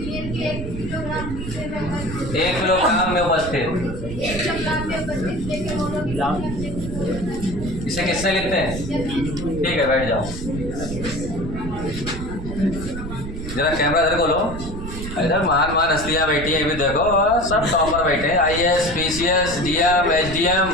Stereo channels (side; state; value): right; noise; rumble, 8 dB below the sound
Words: 1 किलोग्राम में उपस्थित, इसे किससे लिखते हैं? ठीक है, बैठ जाओ। जरा कैमरा इधर खोलो, इधर महान महान हस्तियाँ बैठी हैं, भी देखो सब टॉपर बैठे हैं, IAS, PCS, DM, SDM,